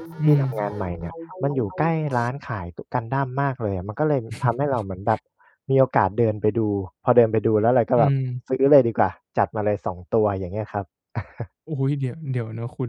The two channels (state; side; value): identical; both; correlation 1.00